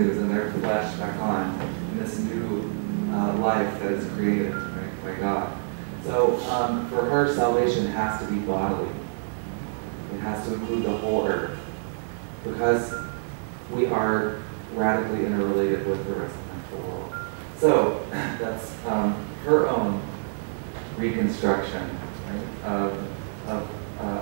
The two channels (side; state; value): left; silent; digital silence